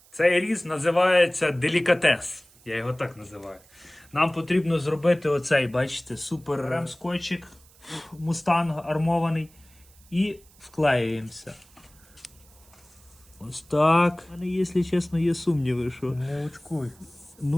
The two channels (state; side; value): noise; right; hiss, 27 dB below the sound